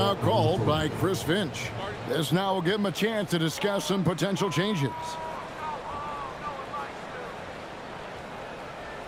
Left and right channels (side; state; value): both; identical; correlation 1.00